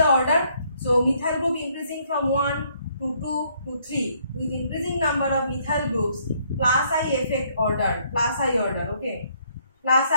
order? So methyl group increasing from 1 to 2 to 3. With increasing number of methyl groups, plus I effect order, plus I order, okay. Plus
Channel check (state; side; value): inverted; both; correlation -0.68